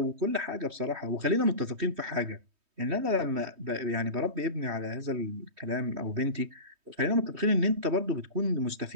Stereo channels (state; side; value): late; left; 3.2 ms